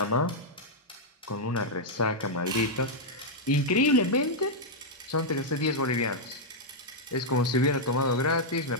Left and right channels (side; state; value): both; normal; correlation -0.04